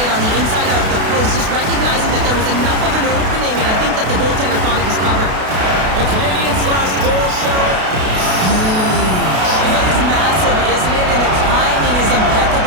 on the inside of the post, just recognizing that there was enough of an opening, and I think that the goaltender thought it was covered. The Canadians' last goal, Cheryl. It is massive, isn't it? And the timing is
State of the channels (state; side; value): late; left; 32 ms